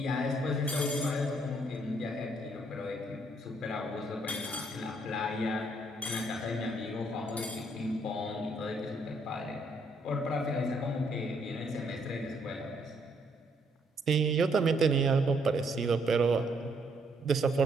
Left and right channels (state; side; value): normal; both; correlation 0.70